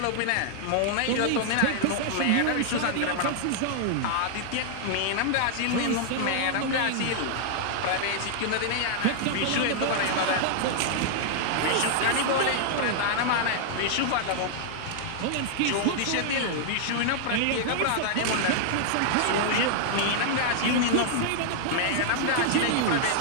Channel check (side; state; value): both; different; correlation -0.01